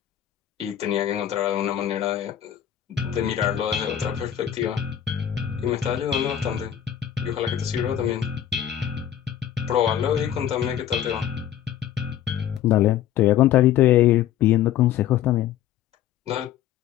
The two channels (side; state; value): right; quieter; 10.7 dB